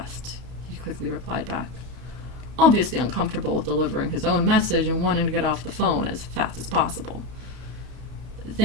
he quickly replied back, obviously uncomfortable with delivering his own message and wanting to get off the phone as fast as possible.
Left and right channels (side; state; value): left; late; 32 ms